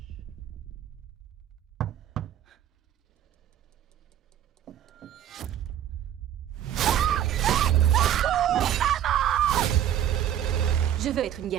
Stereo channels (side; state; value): left; quieter; 10.8 dB